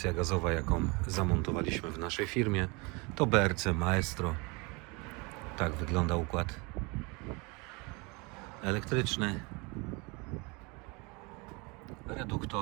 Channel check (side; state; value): left; quieter; 28.3 dB